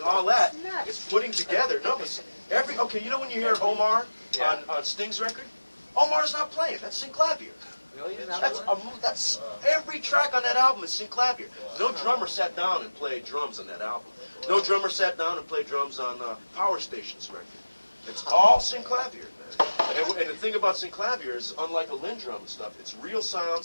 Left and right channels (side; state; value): both; inverted; correlation -1.00